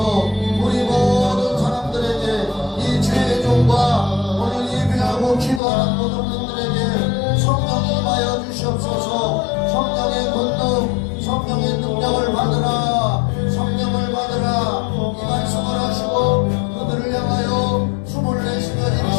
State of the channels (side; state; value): right; drops out; at 5.6 s